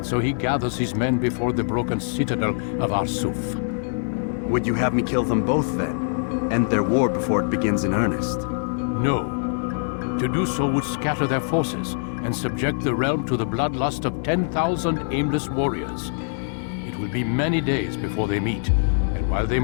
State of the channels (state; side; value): silent; right; digital silence